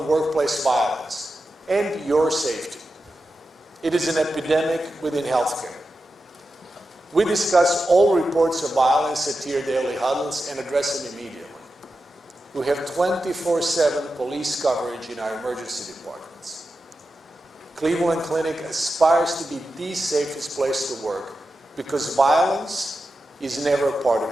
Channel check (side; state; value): both; normal; correlation 0.91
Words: workplace violence and your safety. It is an epidemic within healthcare. We discuss all reports of violence at tier daily huddles and address them immediately. We have 24/7 police coverage in our emergency departments. Cleveland Clinic aspires to be the safest place to work because violence is never a part of